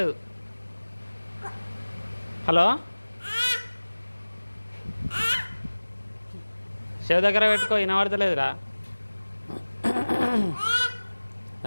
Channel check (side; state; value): both; inverted; correlation -1.00